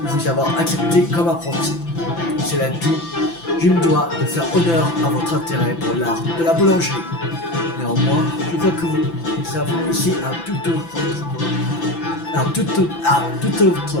avoir accepté comme apprenti. Cela dit, je me dois de faire honneur à votre intérêt pour l'art de la boulangerie. Néanmoins, je vois que vous avez ici un tout autre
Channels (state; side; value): late; right; 5.9 ms